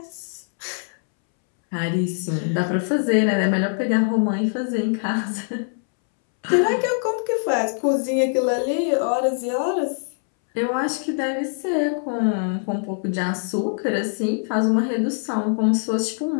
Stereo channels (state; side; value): silent; right; 64 dB below the other